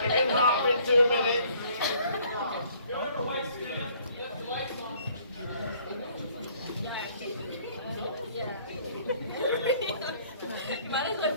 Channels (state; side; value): inverted; both; correlation -0.60